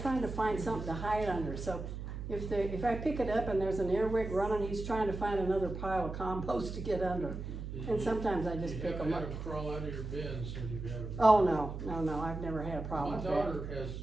to find something to hide under, so if I pick it up and there's an earwig running, he's trying to find another pile of compost to get under. And sometimes I just pick them You up. haven't had them crawl out of your bins since you've had them? Oh, no, I've never had a problem My with that. daughter has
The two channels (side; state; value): right; noise; hum, 7 dB below the sound